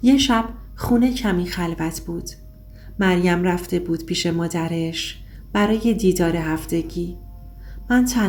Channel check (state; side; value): identical; both; correlation 1.00